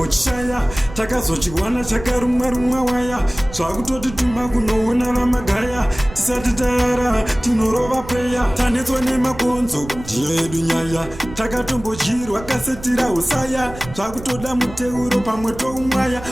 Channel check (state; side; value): noise; right; rumble, 14 dB below the sound